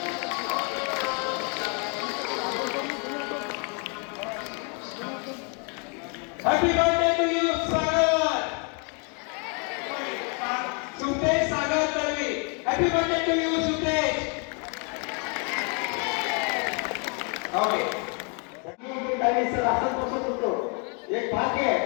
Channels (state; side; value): quieter; right; 36.9 dB